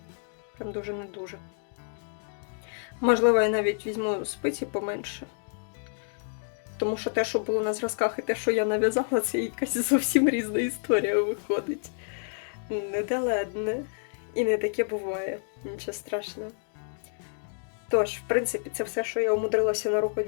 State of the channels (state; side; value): silent; right; 59 dB below the other